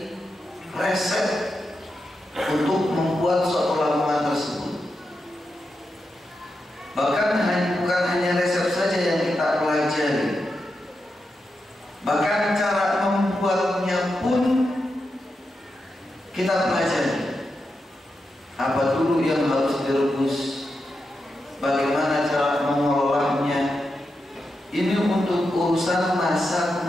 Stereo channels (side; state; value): both; normal; correlation 0.87